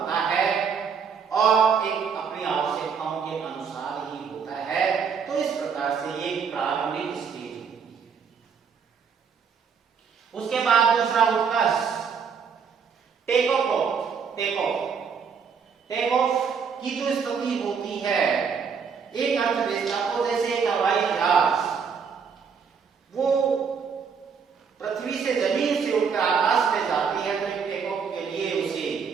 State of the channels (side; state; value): left; quieter; 6.3 dB